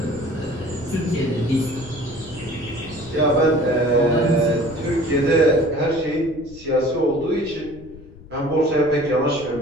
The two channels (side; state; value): left; noise; rumble, 19 dB below the sound